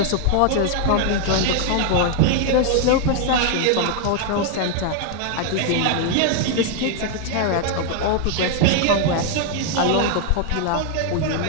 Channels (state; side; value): different; both; correlation 0.00